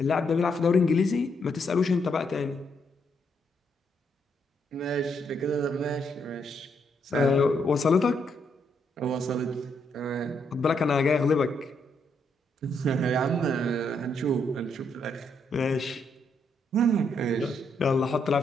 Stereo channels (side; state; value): both; normal; correlation 0.76